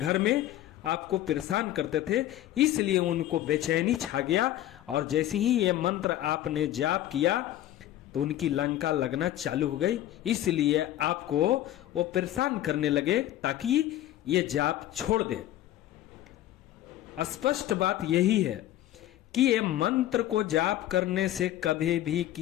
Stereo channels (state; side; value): quieter; right; 13.3 dB